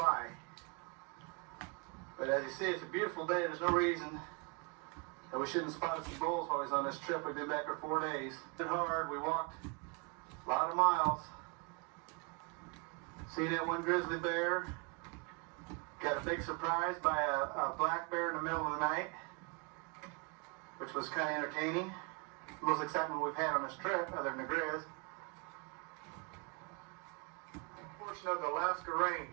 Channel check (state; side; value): quieter; left; 32.4 dB